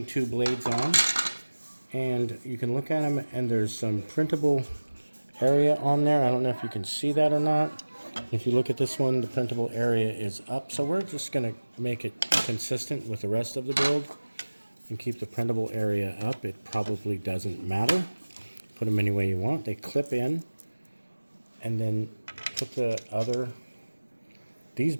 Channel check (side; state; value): both; inverted; correlation -1.00